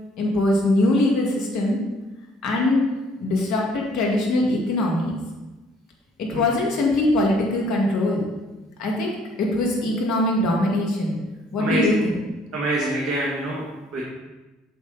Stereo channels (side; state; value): both; normal; correlation 0.61